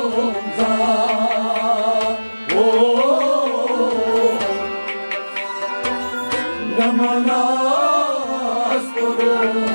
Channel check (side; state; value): both; inverted; correlation -1.00